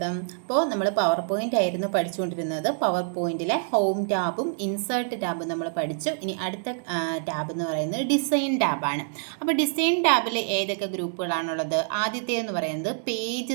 അപ്പോൾ നമ്മൾ പവർ പോയിന്റ് ആയിരുന്നു പഠിച്ചുകൊണ്ടിരുന്നത്. പവർ പോയിന്റിലെ ഹോം ടാബും ഇൻസേർട്ട് ടാബും നമ്മൾ പഠിച്ചു. ഇനി അടുത്ത ടാബ് എന്ന് പറയുന്നത് ഡിസൈൻ ടാബാണ്. അപ്പോൾ ഡിസൈൻ ടാബിൽ ഏതൊക്കെ ഗ്രൂപ്പുകളാണുള്ളത്? ആദ്യത്തേതെന്ന് പറയുന്നത്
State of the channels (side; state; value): left; silent; digital silence